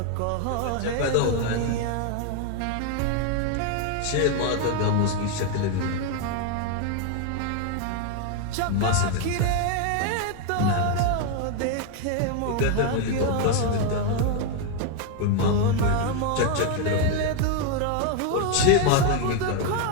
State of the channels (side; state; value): both; different; correlation 0.01